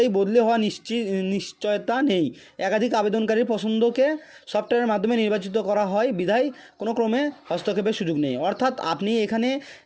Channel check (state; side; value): identical; both; correlation 1.00